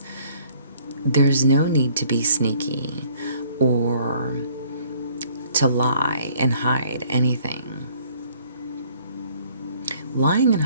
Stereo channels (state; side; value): inverted; both; correlation -0.59